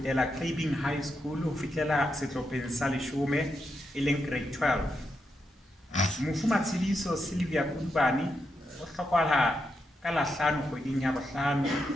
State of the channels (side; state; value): both; normal; correlation 0.84